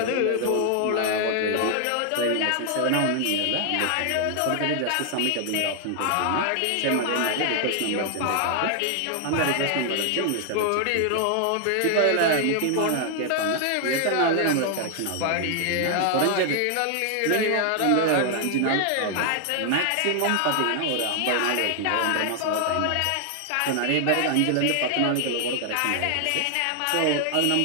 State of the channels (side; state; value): both; different; correlation 0.00